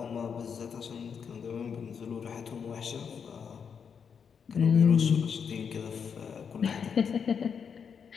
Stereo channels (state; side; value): quieter; right; 6.7 dB